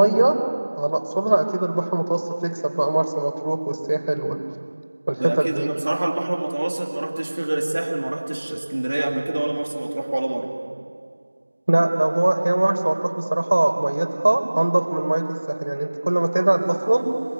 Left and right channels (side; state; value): both; inverted; correlation -1.00